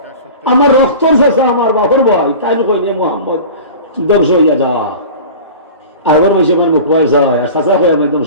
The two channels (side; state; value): both; inverted; correlation -0.37